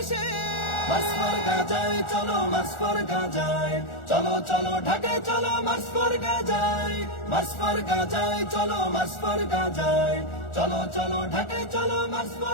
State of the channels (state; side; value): late; right; 1.4 ms